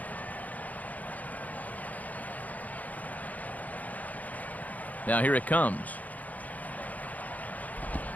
Now here it comes.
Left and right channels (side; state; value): right; late; 0.078 ms